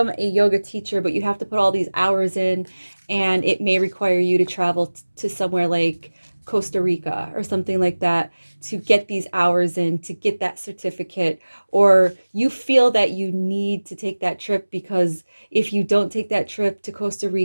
a yoga teacher, but you have to put all these hours in, and it may require you to travel to somewhere like Costa Rica or something like that to get these hours in, to get that certificate. Or you feel that you need to take that trip because if you don't take that trip to Costa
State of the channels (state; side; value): inverted; both; correlation -1.00